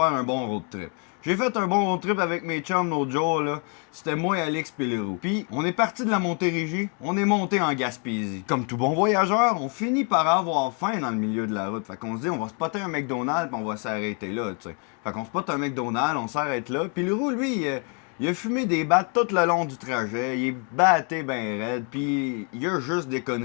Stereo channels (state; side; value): quieter; right; 38.9 dB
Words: un bon road trip? J'ai fait un bon road trip avec mes chums l'autre jour, là. C'était moi, Alex pis Leroux. Puis, on est parti de la Montérégie, on est monté en Gaspésie. Comme tout bon voyageur, on finit par avoir faim dans le milieu de la route. Fait qu'on se dit, on va spotter un McDonald's pis on va s'arrêter là, tu sais. Fait qu'on spotte un McDonald's, on s'arrête là. Puis Leroux, lui, il a fumé des battes tout le long du trajet, il est batté ben raide, puis il y a juste des